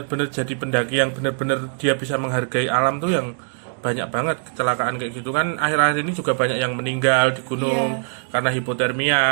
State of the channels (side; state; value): left; silent; 59 dB below the other